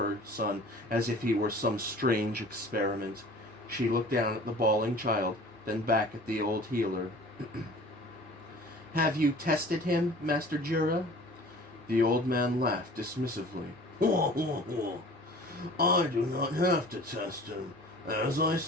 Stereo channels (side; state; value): both; normal; correlation 0.45